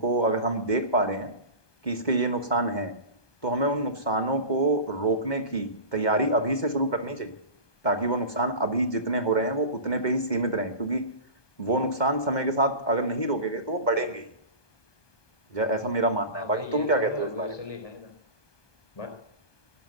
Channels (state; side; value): late; right; 1.2 ms